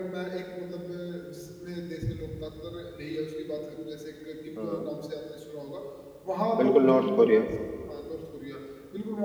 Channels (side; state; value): both; identical; correlation 1.00